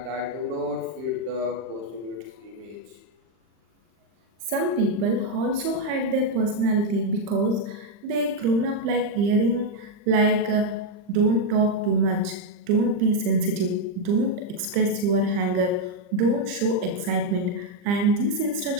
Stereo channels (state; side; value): late; left; 39 ms